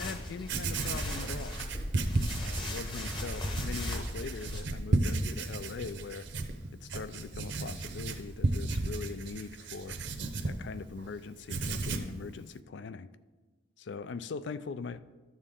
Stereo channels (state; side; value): normal; both; correlation 0.70